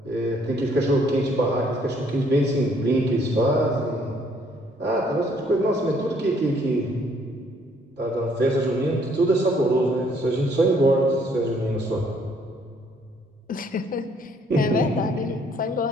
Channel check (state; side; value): normal; both; correlation 0.65